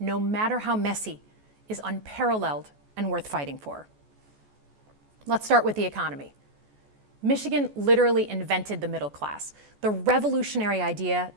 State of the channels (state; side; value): late; left; 14 ms